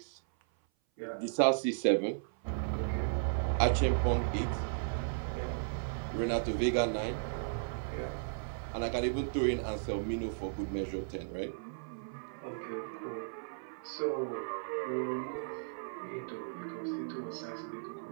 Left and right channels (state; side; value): silent; left; 54 dB below the other